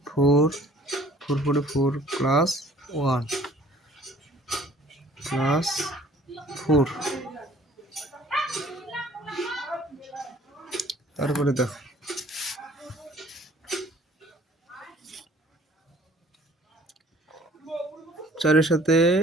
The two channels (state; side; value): normal; both; correlation 0.54